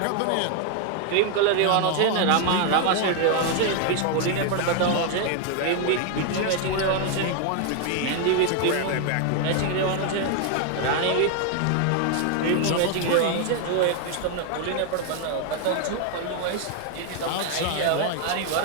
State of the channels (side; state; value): both; different; correlation 0.00